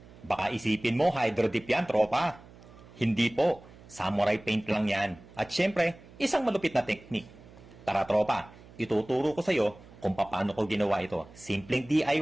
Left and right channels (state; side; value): noise; right; hum, 21 dB below the sound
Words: Baka isipin mo hydro dip yan, tropa. Hindi po, samurai paint lang yan. At syempre, isang malupit na technique. Tara tropa, ituturo ko sa'yo kung paano ko ginawa ito. Simpleng